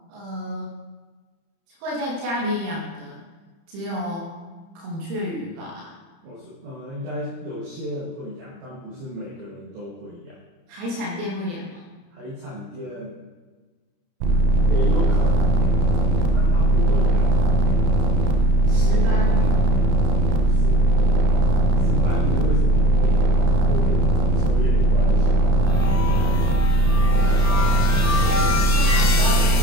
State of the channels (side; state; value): left; late; 30 ms